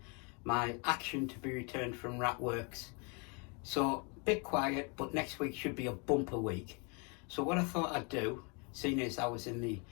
my action to be returned from Ratworks. So a bit quiet, but next week should be a bumper week. So what I thought I'd do, seeing as I was in the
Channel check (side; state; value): right; quieter; 33.5 dB